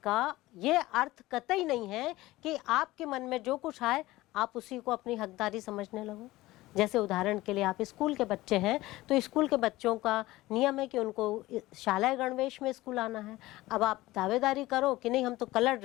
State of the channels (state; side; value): quieter; right; 18.1 dB